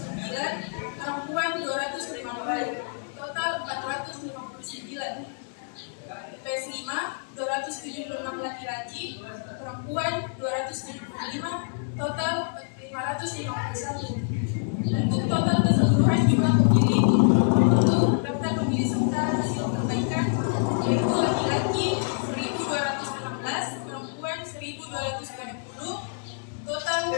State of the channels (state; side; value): silent; right; digital silence